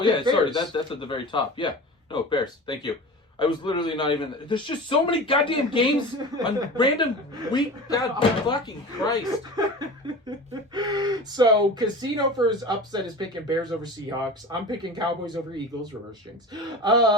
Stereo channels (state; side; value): normal; both; correlation 0.34